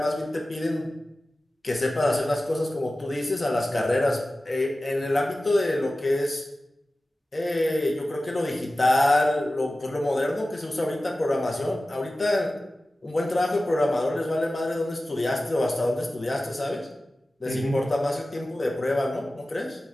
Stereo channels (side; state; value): both; normal; correlation 0.96